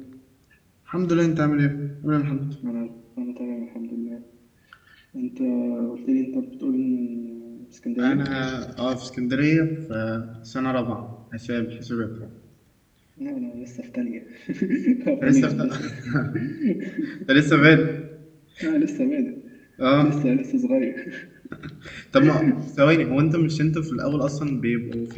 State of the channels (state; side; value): identical; both; correlation 1.00